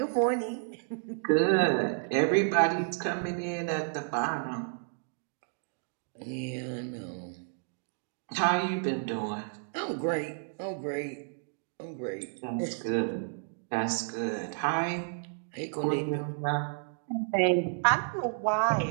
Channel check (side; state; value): left; silent; digital silence